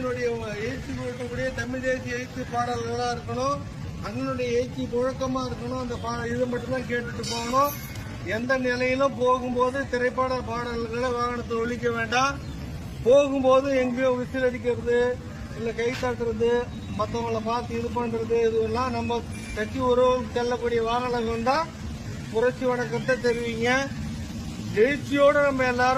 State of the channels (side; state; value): both; identical; correlation 1.00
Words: எழுச்சி கொடுக்கக்கூடிய தமிழ் தேசிய எழுச்சி பாடல்களா இருக்கணும். அண்ணனுடைய எழுச்சி முழக்கமா இருக்கணும். அந்த இது மட்டும்தான் கேட்டுட்டு போகணும். எந்த நிலையிலும் போகும்போது திரைப்பட பாடல்களை வாகனத்தை ஒழிக்க வேண்டாம். போகும்போது எங்கேயோ விசில் அடிக்கிறது, இல்ல கை தட்டுறது, மற்றவங்களை பார்த்து இது பண்றது, இதுவெல்லாம் நம்ம கட்சி உறவு செல்லக்கூடிய வாகனங்கள் தான் புரட்சி வணக்கத்தை தெரிவிங்க. எழுச்சியோடு நம்ம